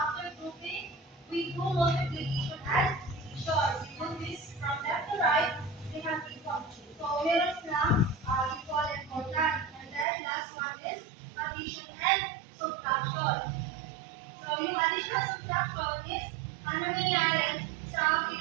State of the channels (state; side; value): drops out; left; at 10.1 s